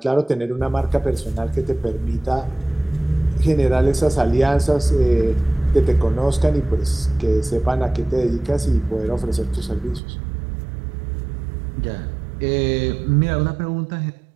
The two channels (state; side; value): drops out; left; at 10.0 s